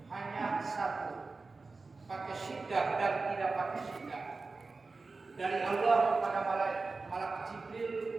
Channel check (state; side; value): quieter; left; 3.9 dB